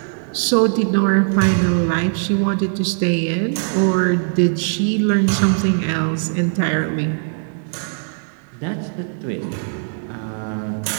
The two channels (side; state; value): left; silent; digital silence